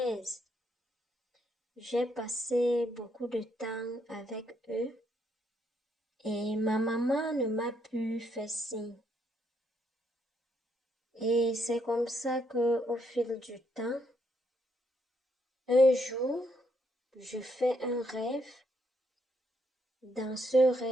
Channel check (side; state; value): both; normal; correlation 0.74